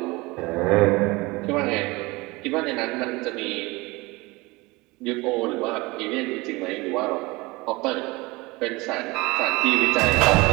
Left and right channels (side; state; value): left; quieter; 23.1 dB